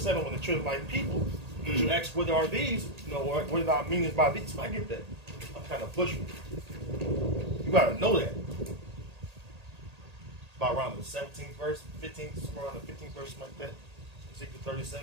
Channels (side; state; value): left; late; 1.8 ms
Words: when the children like people, you ask what are these, you know, what are our meanings by these? I get that. I'm kind of pushing. You gotta know that. About around the 17th verse, 15th, somewhere around the 15th verse, like that. Ezekiel